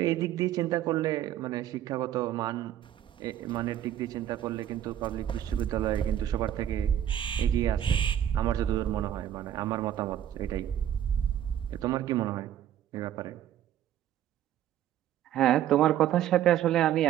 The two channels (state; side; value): quieter; left; 11.1 dB